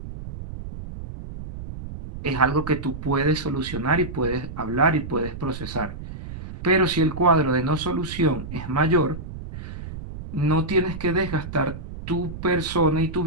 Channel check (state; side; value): noise; right; rumble, 10 dB below the sound